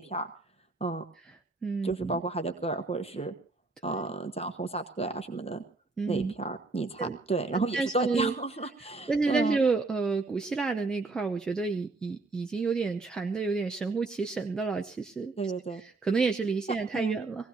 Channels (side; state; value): left; quieter; 3.6 dB